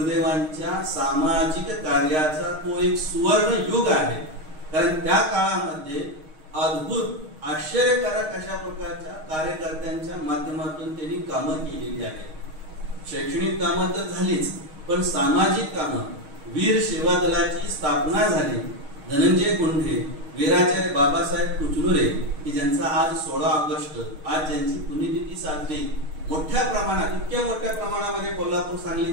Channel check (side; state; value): left; late; 6.4 ms